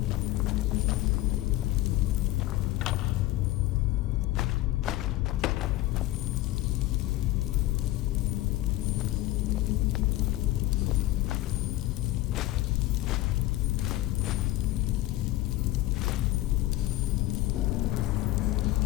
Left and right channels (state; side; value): quieter; right; 16.4 dB